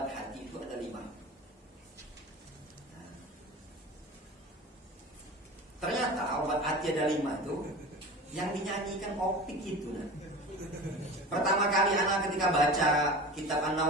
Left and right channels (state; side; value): normal; both; correlation 0.34